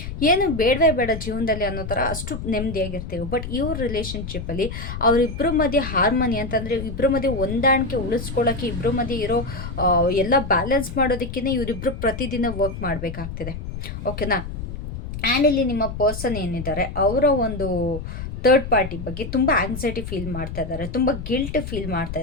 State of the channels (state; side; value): noise; left; rumble, 8 dB below the sound